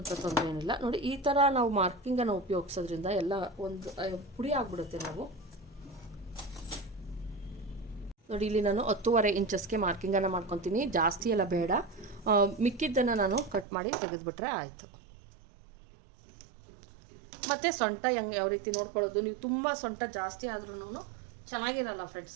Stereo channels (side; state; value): left; drops out; at 13.7 s